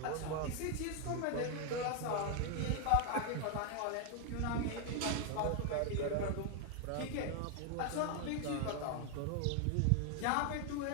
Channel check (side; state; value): both; different; correlation 0.01